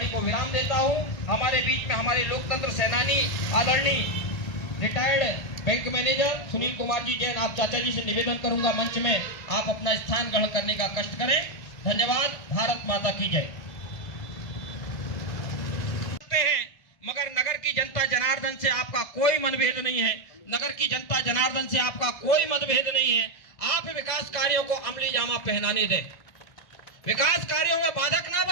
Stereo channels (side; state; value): right; late; 2.0 ms